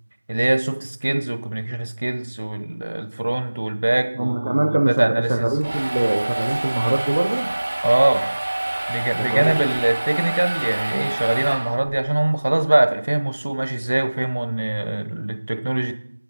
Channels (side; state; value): both; inverted; correlation -1.00